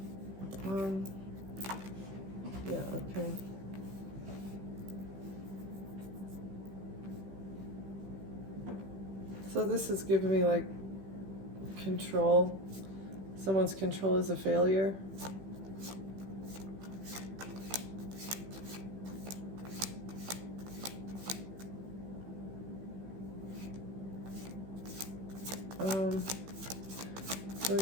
Yeah, okay. So this is giving me like control. Someone's control is a failure. Let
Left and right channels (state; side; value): late; left; 15 ms